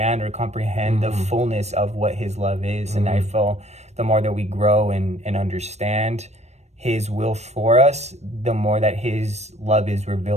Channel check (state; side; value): late; left; 0.32 ms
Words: or comprehend the fullness of what his love is. And I feel the more that we grow and understand his will for us, the more that his love is